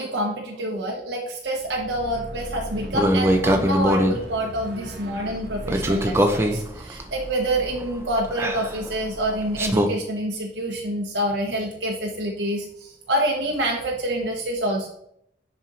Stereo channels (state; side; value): normal; both; correlation 0.35